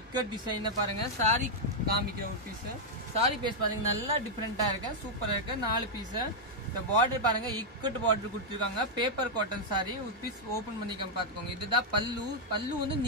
இக்கட் டிசைன் பாருங்க. சாரி காமிக்கிற ஒரு பீஸ். சாரி பேஸ் பாருங்க, நல்லா டிஃபரெண்டா இருக்கு, சூப்பரா இருக்கு. 4 பீஸ். இந்த பார்டர் பாருங்க, இக்கட் பார்டர் கொடுத்துருக்காங்க. பேப்பர் காட்டன் சாரி ஒரு பீஸ் ஓபன் பண்ணிக்க பாத்துக்கோங்க. இதுதான் பல்லு. பல்லு வந்து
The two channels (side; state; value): both; normal; correlation -0.03